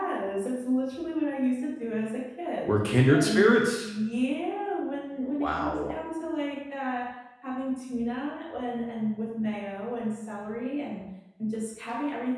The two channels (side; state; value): both; identical; correlation 1.00